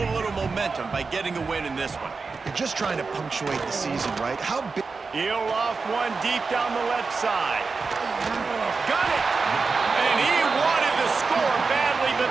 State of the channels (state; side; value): quieter; left; 4.5 dB